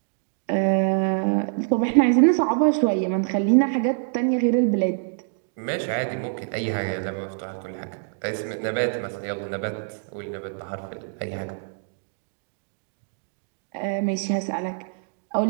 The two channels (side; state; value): left; silent; digital silence